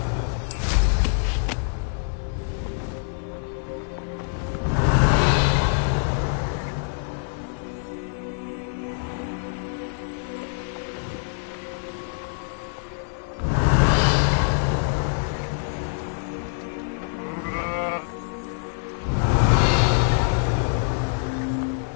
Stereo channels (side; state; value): right; silent; digital silence